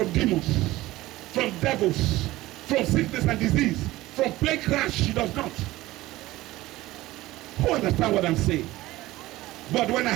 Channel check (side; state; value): left; quieter; 17.5 dB